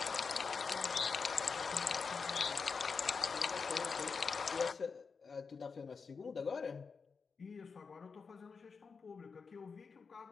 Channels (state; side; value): quieter; right; 5.2 dB